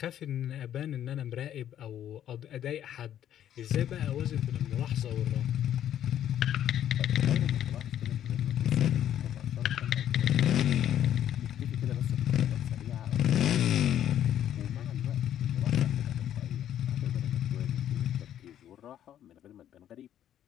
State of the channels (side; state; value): right; quieter; 10.8 dB